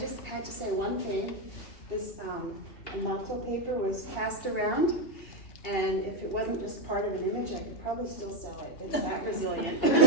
had to say one thing. This motto paper was passed around, and if it wasn't just part of an image, I could probably still sell it. It's that resilient.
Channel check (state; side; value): late; right; 2.7 ms